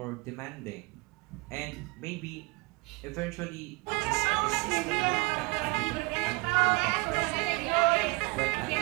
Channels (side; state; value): left; quieter; 27.5 dB